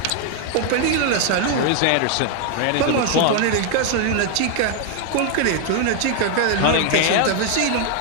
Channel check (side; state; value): both; different; correlation 0.00